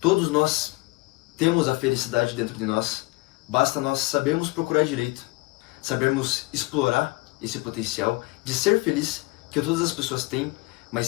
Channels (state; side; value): quieter; right; 24.2 dB